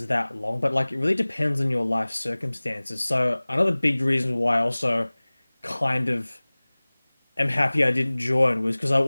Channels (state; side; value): inverted; both; correlation -1.00